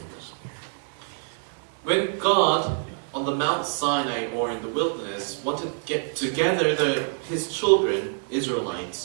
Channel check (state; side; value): silent; left; 59 dB below the other